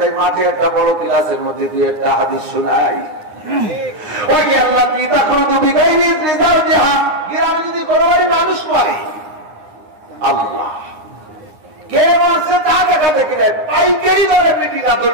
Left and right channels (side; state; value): left; late; 9.7 ms